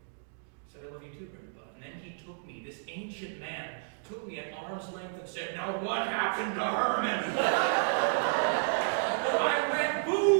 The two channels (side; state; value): left; silent; digital silence